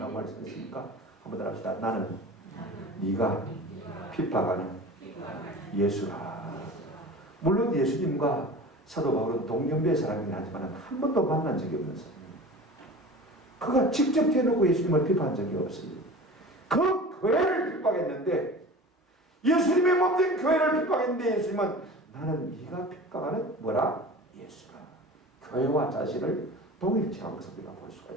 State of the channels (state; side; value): normal; both; correlation 0.37